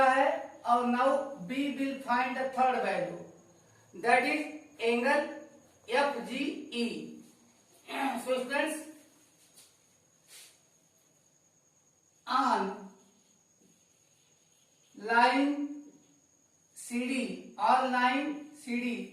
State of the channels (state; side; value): identical; both; correlation 1.00